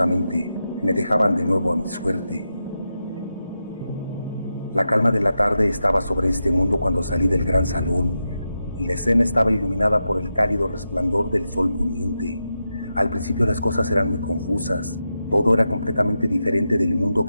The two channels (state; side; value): inverted; both; correlation -0.88